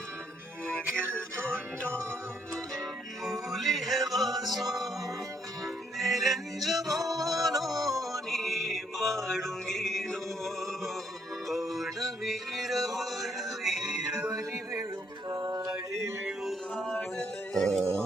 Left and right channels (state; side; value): normal; both; correlation 0.71